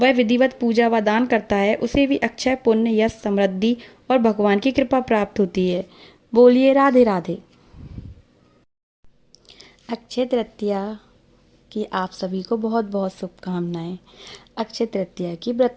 विधिवत पूजा व दान करता है, उसे भी अक्षय, पुण्य, यश, समृद्धि और भगवान की कृपा प्राप्त होती है। बोलिए राधे राधे। अक्षय तृतीया की आप सभी को बहुत बहुत शुभकामनाएं। अक्षय तृतीया की व्रत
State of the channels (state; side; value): identical; both; correlation 1.00